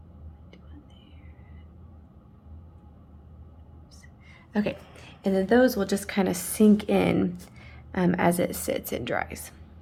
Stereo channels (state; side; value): identical; both; correlation 1.00